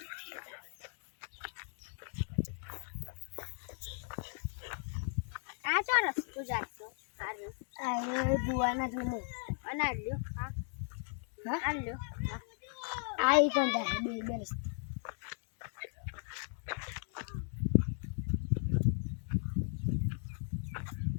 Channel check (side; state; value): right; silent; 53 dB below the other